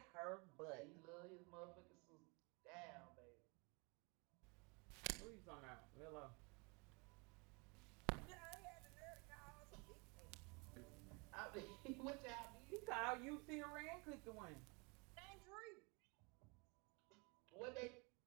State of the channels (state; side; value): quieter; left; 30.4 dB